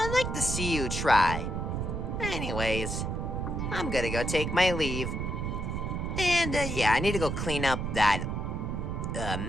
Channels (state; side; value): noise; right; rumble, 2 dB below the sound